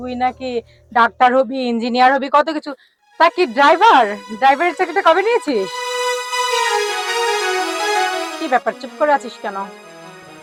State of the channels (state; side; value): identical; both; correlation 1.00